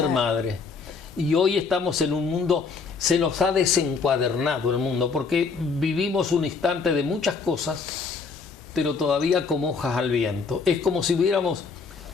madres. Y hoy estamos en un mundo, se nos ha desencuadernado el mundo, porque vivimos un instante de muchas cosas, pero todavía como hojas al viento. Es como si hubiéramos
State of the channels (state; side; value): quieter; right; 5.0 dB